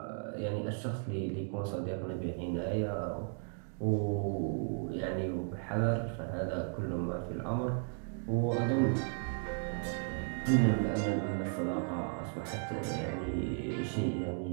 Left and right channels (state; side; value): silent; left; 54 dB below the other